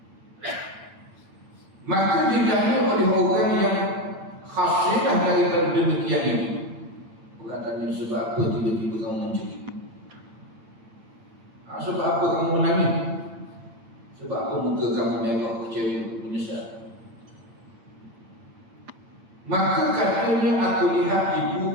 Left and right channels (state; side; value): late; left; 8.8 ms